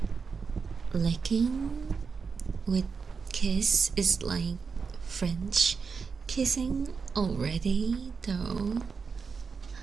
licking with kiss is like French kissing already, though.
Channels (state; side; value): quieter; left; 5.4 dB